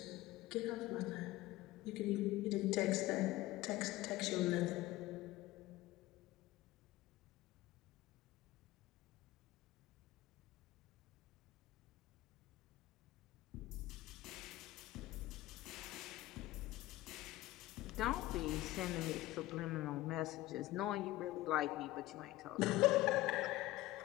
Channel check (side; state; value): right; quieter; 17.3 dB